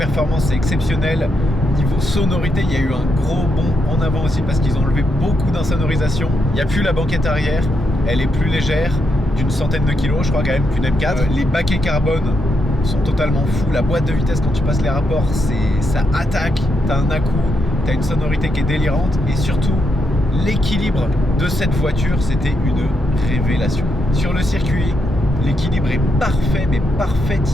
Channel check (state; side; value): normal; both; correlation 0.81